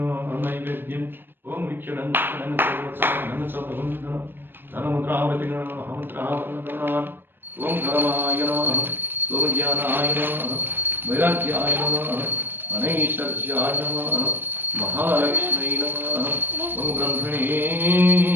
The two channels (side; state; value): left; late; 0.097 ms